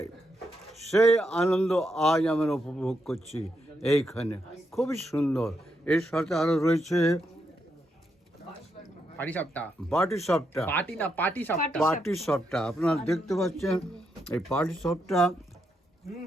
সেই আনন্দ আজ আমরা উপভোগ করছি এইখানে। খুবই সুন্দর। এর সাথে আরও রয়েছে পাটিসাপটা। পাটিসাপটা আপনারা দেখতে পাচ্ছেন, এই পাটিসাপটা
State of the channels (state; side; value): normal; both; correlation 0.81